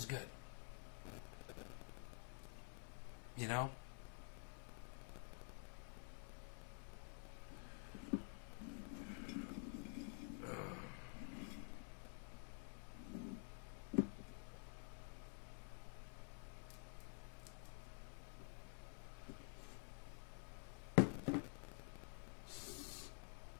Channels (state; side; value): quieter; right; 39.6 dB